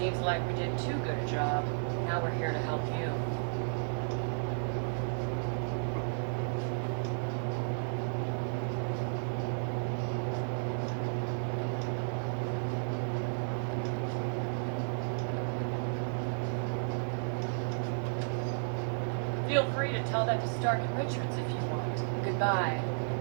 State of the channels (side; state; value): left; silent; digital silence